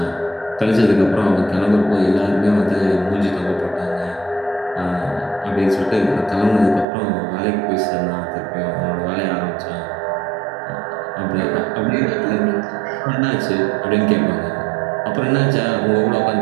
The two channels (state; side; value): drops out; left; at 6.9 s